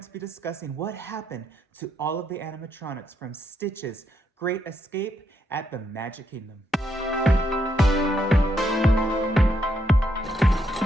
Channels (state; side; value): normal; both; correlation 0.77